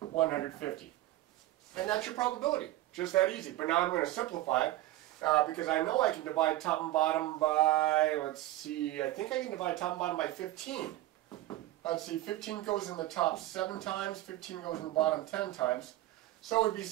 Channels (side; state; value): left; quieter; 16.0 dB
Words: And that's your probability. Just that easy. But now I'm going to simplify it because I know I can divide top and bottom by, let's see, I think I can divide top and bottom by 15. Let's see, 15 goes in the top 7 times, 15 goes in the bottom 10 times. So it would be